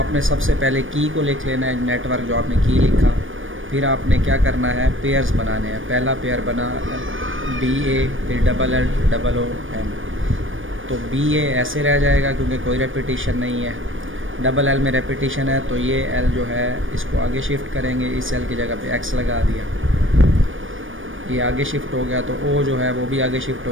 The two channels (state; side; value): late; left; 0.57 ms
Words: सबसे पहले की को लिख लेना है, नेटवर्क जो आपने की लिखा। फिर आपने क्या करना है, पेयर्स बनाने हैं। पहला पेयर बना BA, फिर LLOM। तो BA ऐसे रह जाएगा क्योंकि कोई रेपिटेशन नहीं है। LL में रेपिटेशन है तो ये L जो है इसको आगे शिफ्ट करेंगे, इस L की जगह पे X लगा दिया, ये आगे शिफ्ट हो गया। तो O जो है वो भी आगे शिफ्ट